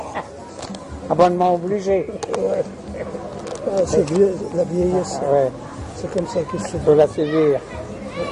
Abonnement obligé. Ouais. Ah, c'est la vieillesse. Ouais. C'est comme ça qu'il se Il faut la suivre.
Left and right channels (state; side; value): identical; both; correlation 1.00